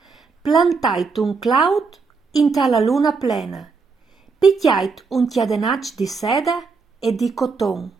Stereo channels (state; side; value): quieter; left; 4.7 dB